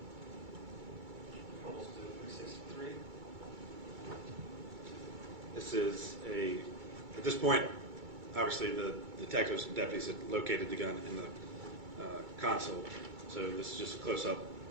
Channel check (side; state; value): left; late; 2.3 ms